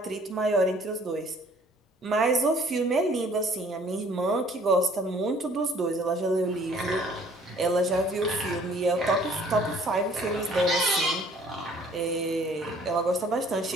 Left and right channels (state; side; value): normal; both; correlation 0.57